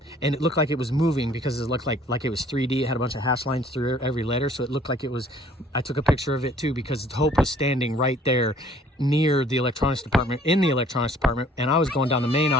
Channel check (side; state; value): both; normal; correlation 0.57